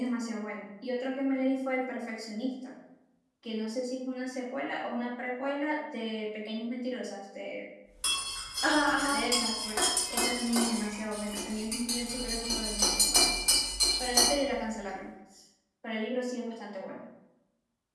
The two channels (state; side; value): identical; both; correlation 1.00